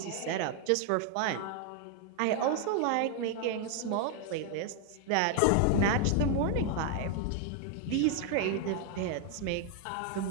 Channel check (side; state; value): both; different; correlation 0.00